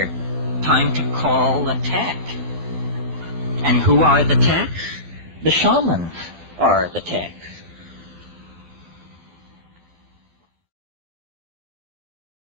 Time to call a tech. And who are the techs? The shamans are the techs.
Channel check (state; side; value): late; left; 12 ms